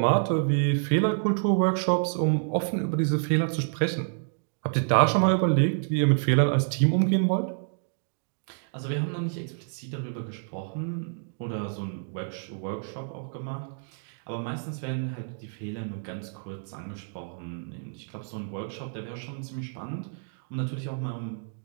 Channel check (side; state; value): left; silent; digital silence